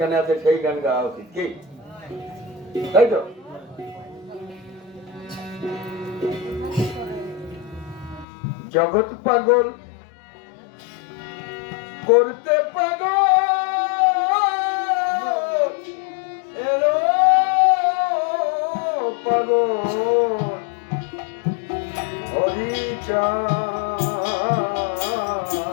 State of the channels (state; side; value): drops out; right; at 8.2 s